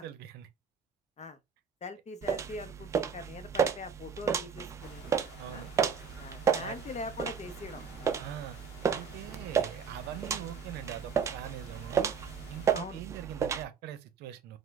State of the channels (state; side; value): quieter; left; 6.2 dB